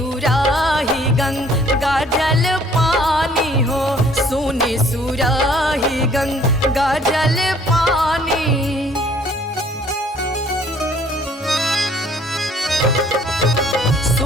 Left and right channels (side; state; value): both; normal; correlation 0.59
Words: गंगा जल पानी हो, सोनी सुराही गंगा जल पानी,